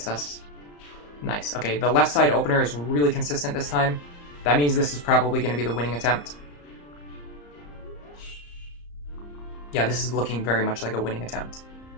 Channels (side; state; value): right; late; 34 ms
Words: us. Nice. Okay, the left side opener is really consistent this time. That means this is probably going to be the winning attempt. Yeah, this is looking very much like a winning attempt.